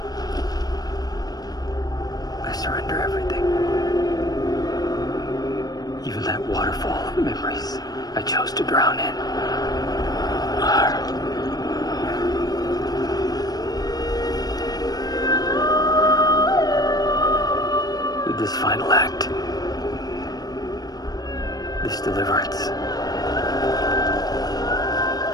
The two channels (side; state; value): right; late; 0.19 ms